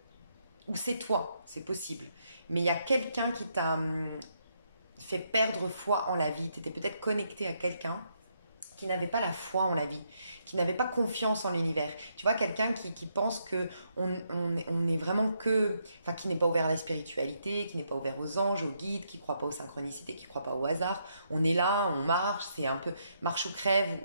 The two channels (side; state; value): both; inverted; correlation -0.77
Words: ou c'est toi, c'est possible, mais il y a quelqu'un qui t'a fait perdre foi en la vie. Tu étais peut-être connecté à quelqu'un qui n'avait pas la foi en la vie, qui n'avait pas confiance en l'univers. Tu vois, quelqu'un qui pense que on est vraiment que... Enfin, qui n'est pas ouvert à la spiritualité, qui n'est pas ouvert aux anges, aux guides, qui ne croit pas aux synchronicités, qui ne croit pas au hasard. On est là, on marche, c'est un peu marche ou crève.